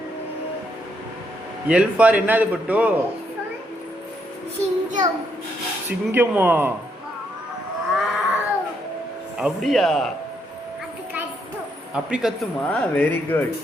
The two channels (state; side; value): normal; both; correlation 0.76